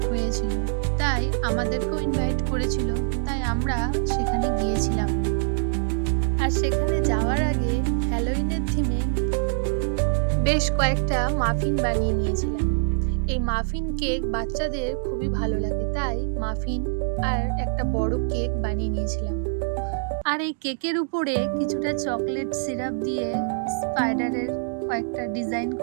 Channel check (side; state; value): left; silent; digital silence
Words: হয়েছিল, তাই আমাদেরকেও ইনভাইট করেছিল, তাই আমরা সেখানে গিয়েছিলাম। আর সেখানে যাওয়ার আগে হ্যালোইনের থিমে বেশ কয়েকটা মাফিন বানিয়ে নিয়েছিলাম। এই মাফিন কেক বাচ্চাদের খুবই ভালো লাগে, তাই মাফিন আর একটা বড় কেক বানিয়ে নিয়েছিলাম। আর এই কেকের উপরে কিছুটা চকলেট সিরাপ দিয়ে স্পাইডারের কয়েকটা ডিজাইন